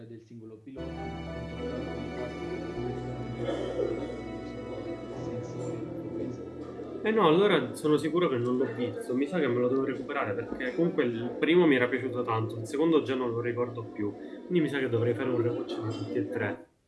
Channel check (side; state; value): both; identical; correlation 1.00